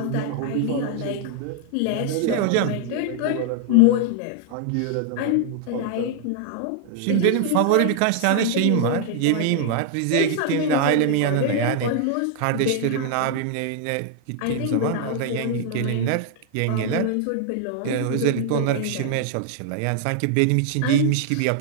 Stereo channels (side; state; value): both; different; correlation 0.00